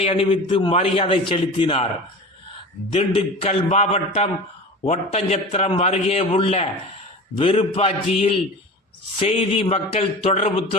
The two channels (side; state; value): both; normal; correlation 0.34